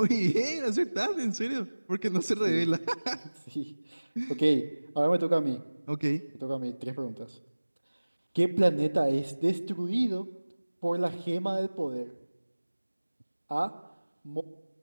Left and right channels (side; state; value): both; inverted; correlation -1.00